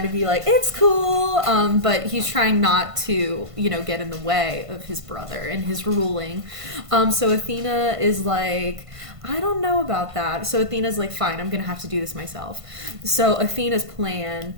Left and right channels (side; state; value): left; late; 1.5 ms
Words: to be like, it's cool. But he's trying not to, get in the way of his brother and his ruling. So Athena is like, I don't know about that. So Athena's like, fine, I'm going to have to do this myself. So Athena's plan